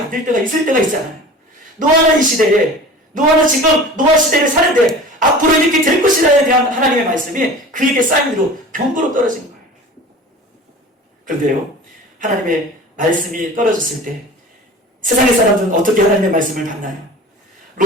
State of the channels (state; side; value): normal; both; correlation 0.39